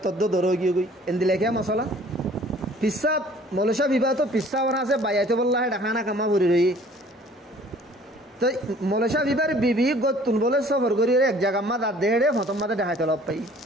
তদ্দ দরো গিয়ে কই এন্দিলে কে মশলা পিসা মলেশা বিবাহ তো পিসা ওরা আছে বাইয়াতে বললা হেডা খানা কামা ভরি রই তো মলেশা বিবার বিবি গতুন বলে সফর করি এক জায়গা মা দাঁত দেড়ে হতম মাদে দেখাইতে লব পাই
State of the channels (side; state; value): both; normal; correlation 0.53